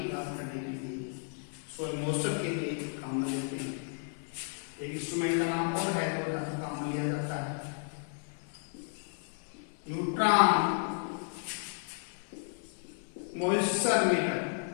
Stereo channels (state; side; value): silent; right; 56 dB below the other